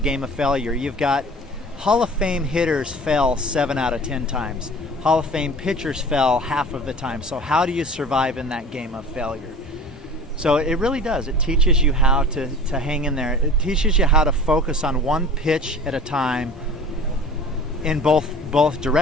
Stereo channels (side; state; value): both; normal; correlation 0.42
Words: of failure. You've got Hall of Fame hitters fail 7 out of 10 times. Hall of Fame pitchers fail half of the time. So how do you survive in that game of failure? So it really does. It teaches you how to hang in there. It teaches you how to focus on one pitch at a time in both